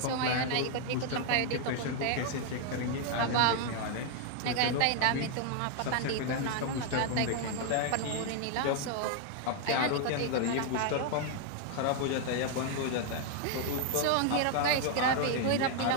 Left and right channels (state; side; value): different; both; correlation 0.00